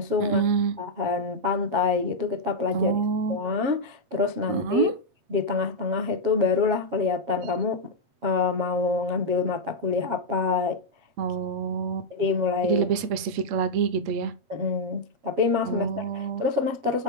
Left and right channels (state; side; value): late; left; 8.5 ms